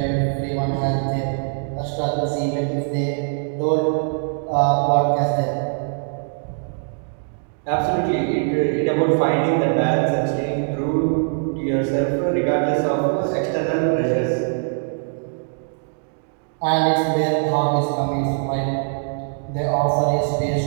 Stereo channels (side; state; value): left; silent; 64 dB below the other